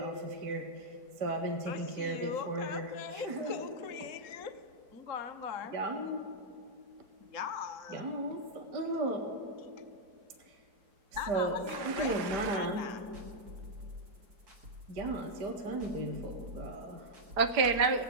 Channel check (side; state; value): left; late; 4.9 ms